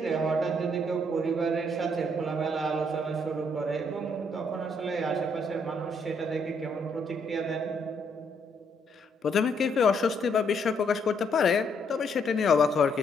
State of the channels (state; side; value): normal; both; correlation 0.72